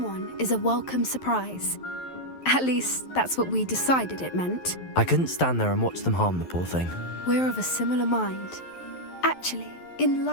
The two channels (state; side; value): late; right; 11 ms